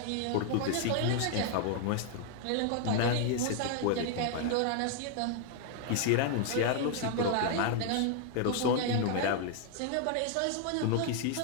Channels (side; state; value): both; different; correlation 0.00